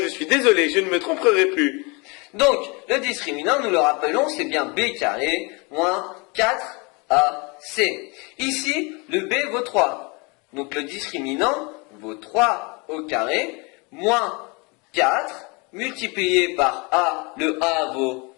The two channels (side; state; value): right; quieter; 29.2 dB